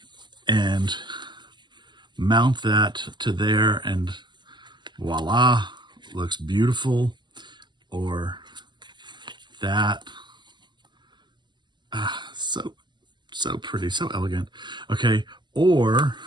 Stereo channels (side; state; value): left; late; 0.21 ms